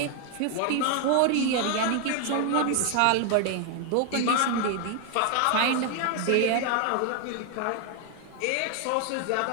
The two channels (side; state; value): both; different; correlation 0.01